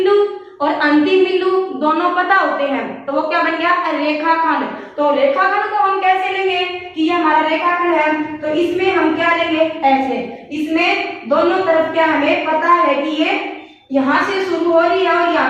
और अंतिम बिंदु दोनों पता होते हैं, तो वो क्या बन गया? रेखाखंड। तो रेखाखंड को हम कैसे लेंगे कि ये हमारा रेखाखंड है? तो इसमें हम क्या लेंगे? ऐसे। इसमें दोनों तरफ क्या हमें पता है कि ये यहाँ से शुरू हो रही है और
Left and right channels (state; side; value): identical; both; correlation 1.00